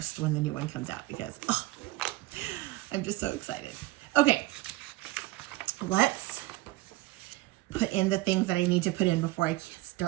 when the new one comes out because I'm just so excited. Okay, let's put in the things that I need to put in before I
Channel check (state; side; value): quieter; left; 18.2 dB